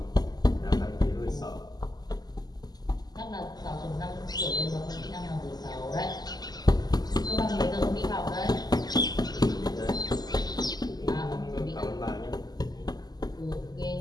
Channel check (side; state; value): right; late; 0.20 ms